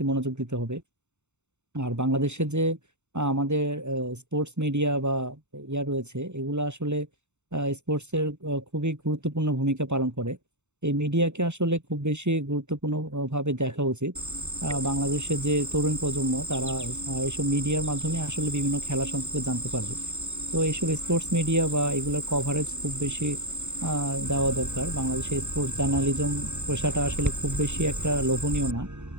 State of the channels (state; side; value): late; left; 0.83 ms